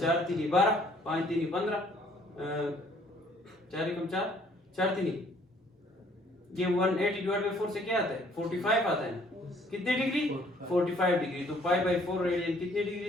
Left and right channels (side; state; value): both; normal; correlation 0.61